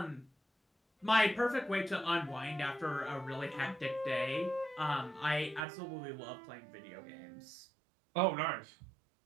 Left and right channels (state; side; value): drops out; left; at 5.7 s